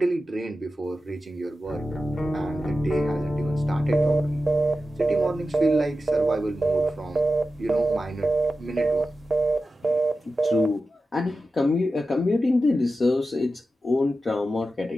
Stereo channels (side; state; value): both; normal; correlation 0.92